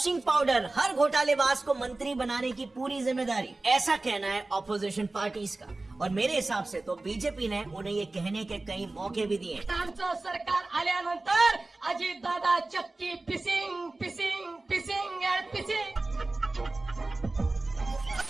पाउडर, हर घोटालेबाज को मंत्री बनाने की पूरी जिम्मेदारी, ऐसा कहना है ऑपोजिशन पार्टीज का। और मेरे हिसाब से तो बीजेपी ने उन्हें ये कहने के कई मौके भी दिए। सरकार आल्यानंतर अजित दादा चक्की पिसिंग पिसिंग पिसिंग एंड पिसिंग।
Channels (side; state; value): left; quieter; 3.1 dB